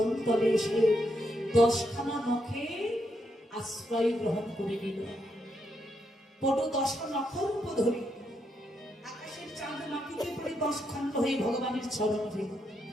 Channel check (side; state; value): both; normal; correlation 0.80